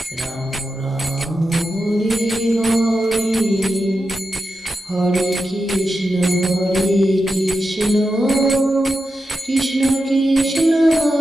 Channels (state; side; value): normal; both; correlation 0.89